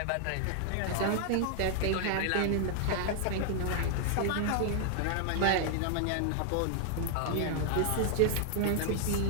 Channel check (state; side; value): different; both; correlation 0.00